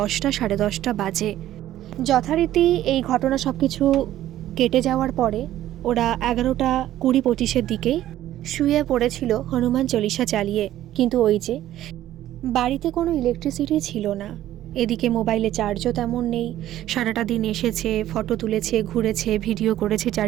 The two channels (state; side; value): quieter; left; 13.2 dB